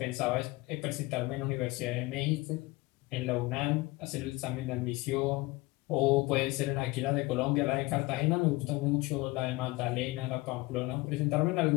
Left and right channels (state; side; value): quieter; right; 22.1 dB